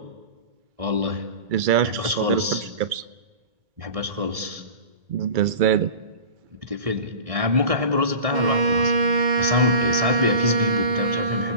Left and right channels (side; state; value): left; late; 1.7 ms